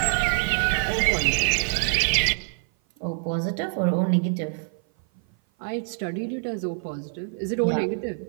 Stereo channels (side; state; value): left; silent; 56 dB below the other